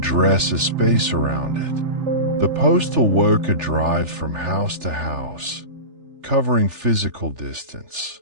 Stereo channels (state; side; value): late; left; 3.4 ms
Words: has space around it. The postal worker drives from house to house, covering physical distance.